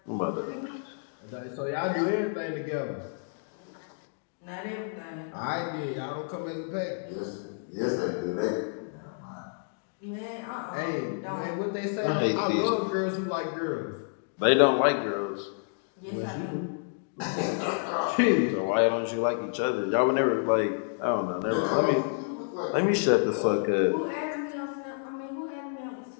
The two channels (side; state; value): right; silent; digital silence